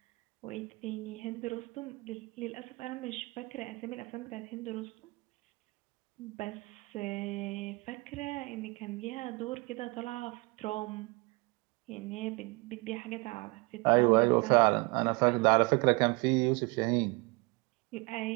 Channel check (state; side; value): quieter; left; 26.4 dB